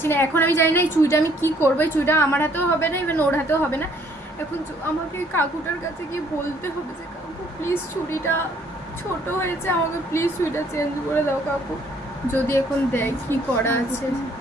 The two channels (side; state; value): both; normal; correlation 0.63